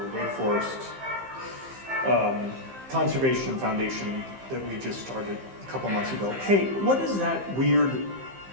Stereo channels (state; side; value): late; left; 15 ms